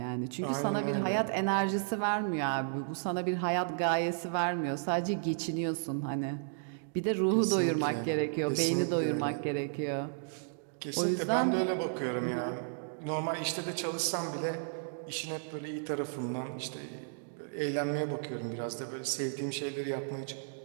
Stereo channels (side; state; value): left; silent; digital silence